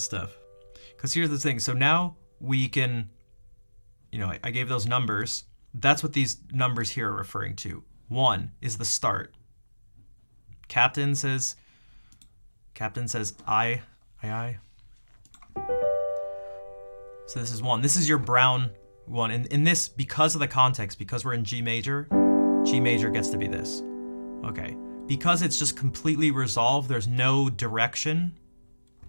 stuff, because here's the thing. So now we can. I gave those numbers. That's what these numbers here are referring to. 1 is the start. Captain says I. So this is 1. This is your brown one. And in this, because of the context, because we're in G major gets to be this. Okay. Because it's just completely resolved, there's no direction.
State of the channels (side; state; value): both; inverted; correlation -1.00